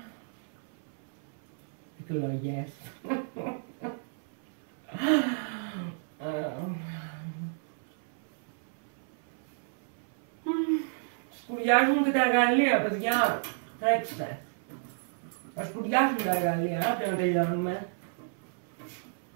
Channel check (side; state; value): left; silent; 57 dB below the other